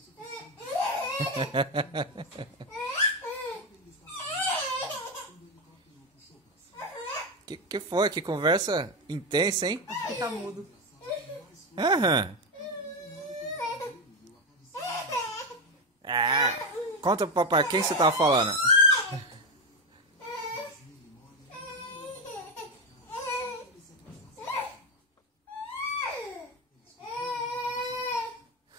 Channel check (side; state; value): both; normal; correlation 0.12